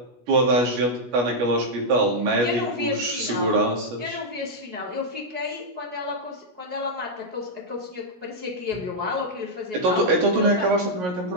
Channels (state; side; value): late; left; 17 ms